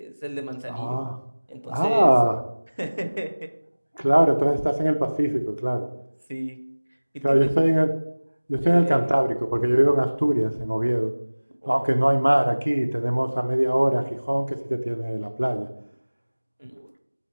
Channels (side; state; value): both; inverted; correlation -1.00